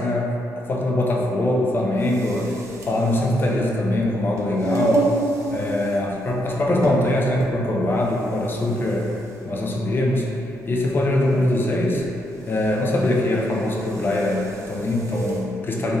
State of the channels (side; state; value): both; normal; correlation 0.78